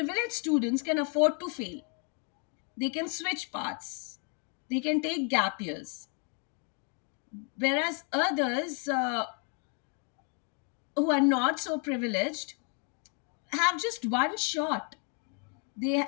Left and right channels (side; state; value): right; quieter; 40.0 dB